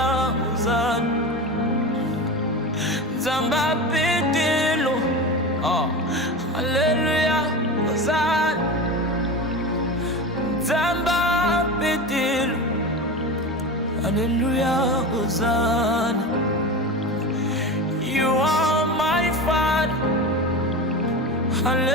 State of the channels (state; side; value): normal; both; correlation 0.26